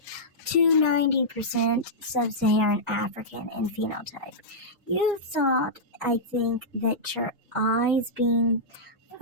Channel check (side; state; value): both; normal; correlation -0.13